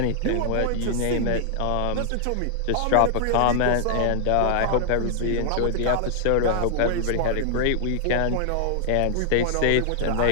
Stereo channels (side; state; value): both; different; correlation -0.01